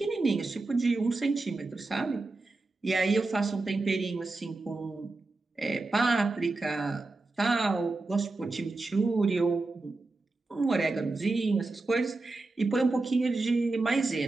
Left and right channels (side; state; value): left; quieter; 3.3 dB